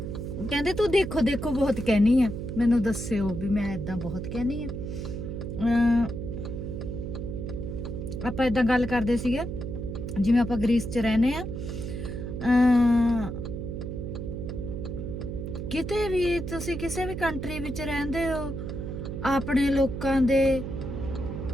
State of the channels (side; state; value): right; noise; hum, 6 dB below the sound